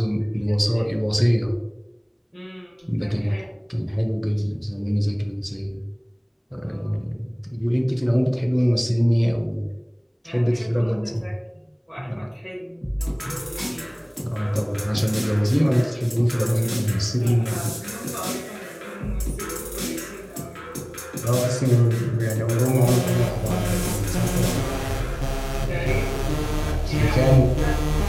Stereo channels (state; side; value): identical; both; correlation 1.00